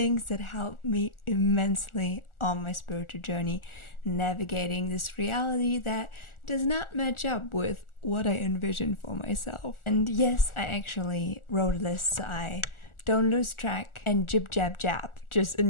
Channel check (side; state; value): right; late; 1.4 ms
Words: that helped me immensely on my spiritual journey, navigating this reality that does not match up with what I envision for myself. And yes, I actually wrote a list so I don't lose track and jib jab jab just in